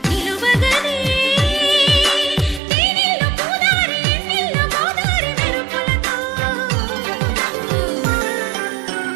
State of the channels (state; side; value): drops out; left; at 2.6 s